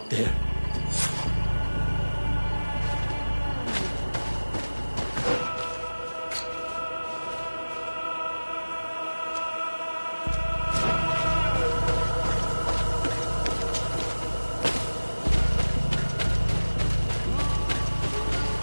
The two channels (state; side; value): inverted; both; correlation -1.00